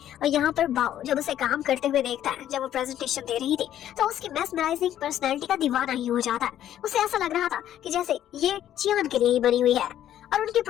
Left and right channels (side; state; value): right; quieter; 11.4 dB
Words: और यहाँ पर बाओ जब उसे काम करते हुए देखता है, जब वो प्रेजेंटेशन दे रही थी तो उसकी मेस्मराइजिंग पर्सनैलिटी का दीवाना ही हो जाता है। उसे ऐसा लग रहा था कि जैसे ये चियान के लिए ही बनी हुई है और उनकी